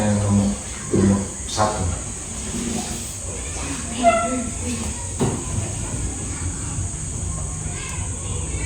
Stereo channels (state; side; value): identical; both; correlation 1.00